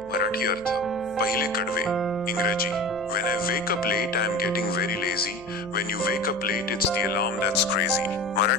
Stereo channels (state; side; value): noise; left; hum, 22 dB below the sound